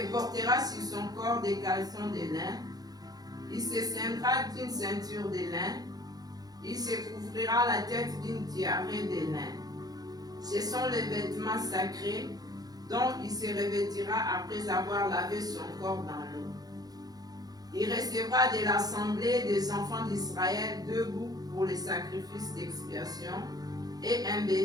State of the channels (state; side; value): late; left; 0.19 ms